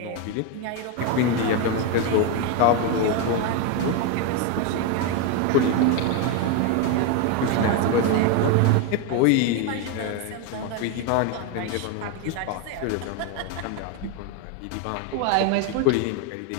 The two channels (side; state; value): both; different; correlation 0.02